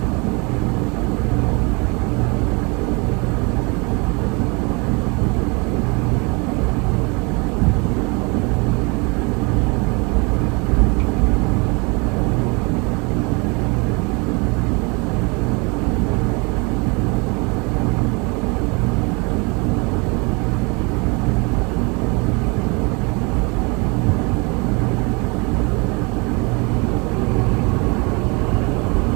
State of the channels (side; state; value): left; quieter; 29.4 dB